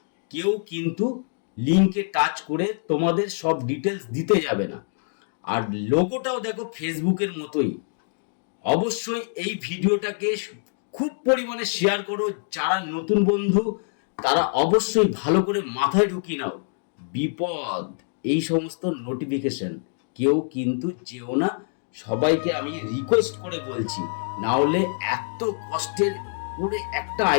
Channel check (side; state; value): right; silent; 62 dB below the other